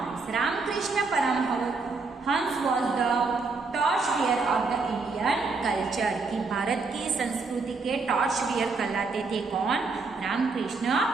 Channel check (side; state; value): left; quieter; 4.2 dB